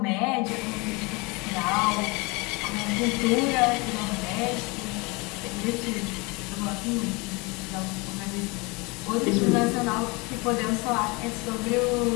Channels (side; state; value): right; quieter; 26.9 dB